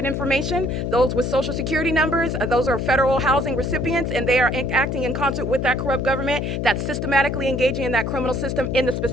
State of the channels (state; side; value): noise; left; hum, 2 dB below the sound